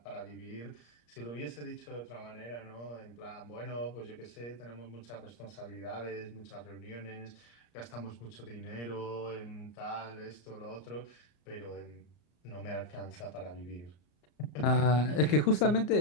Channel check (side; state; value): right; late; 34 ms